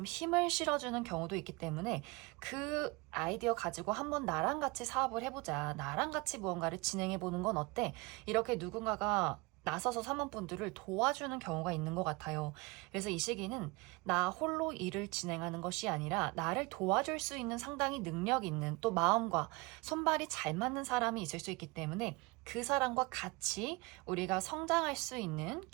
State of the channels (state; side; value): quieter; left; 25.4 dB